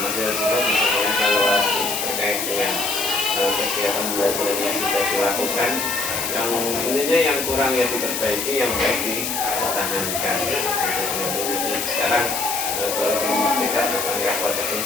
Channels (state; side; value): noise; left; hiss, 2 dB below the sound